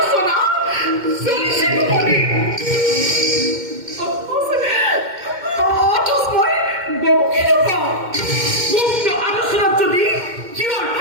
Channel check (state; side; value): late; left; 2.1 ms